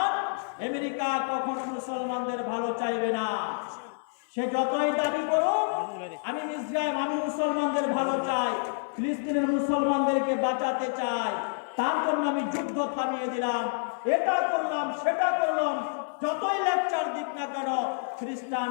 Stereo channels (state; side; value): silent; right; digital silence